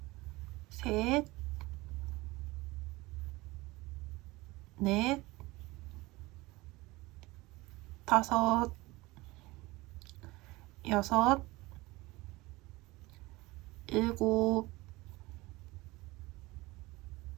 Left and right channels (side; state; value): left; quieter; 21.2 dB